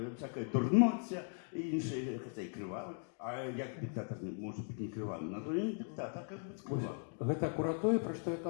всякая дурноця, і інші, хоча і кривавий. А як диктатор може бути не кривавий? На то він диктатор, як бути кривавий. Гэта акурат тое, пра што я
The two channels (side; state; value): right; silent; 52 dB below the other